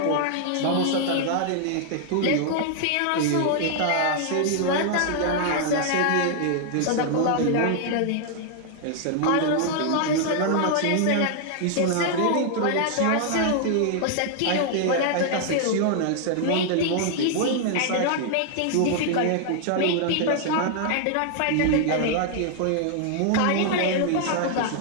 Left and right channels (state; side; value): different; both; correlation 0.00